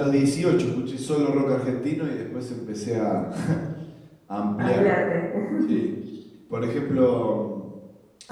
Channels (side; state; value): both; identical; correlation 1.00